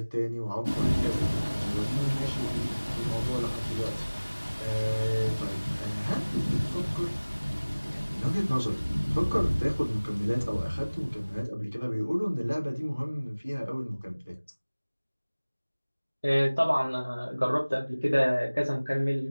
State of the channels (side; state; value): both; inverted; correlation -1.00